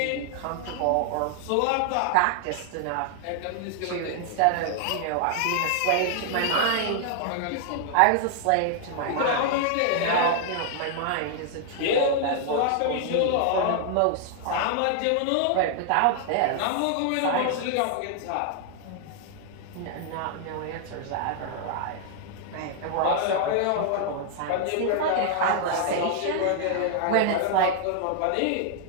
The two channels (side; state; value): both; different; correlation 0.00